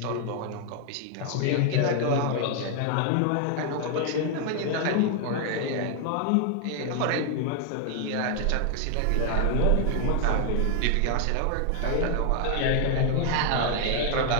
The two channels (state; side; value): different; both; correlation 0.00